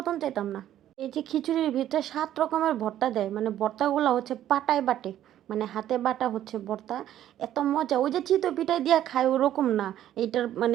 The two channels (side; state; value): left; quieter; 11.9 dB